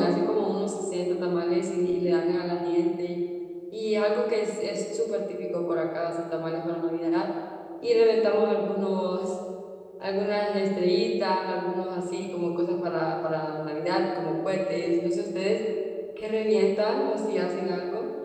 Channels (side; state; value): both; identical; correlation 1.00